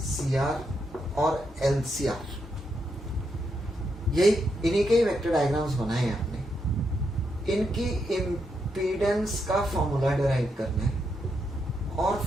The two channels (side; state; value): both; normal; correlation 0.81